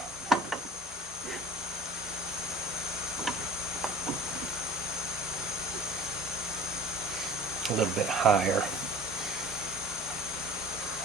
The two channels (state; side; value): normal; both; correlation 0.44